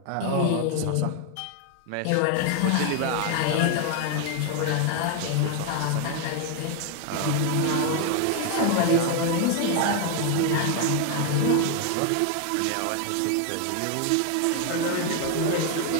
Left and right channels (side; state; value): both; different; correlation 0.01